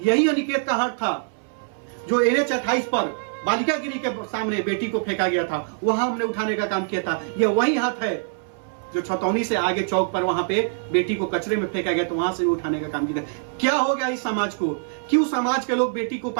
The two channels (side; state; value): left; silent; 63 dB below the other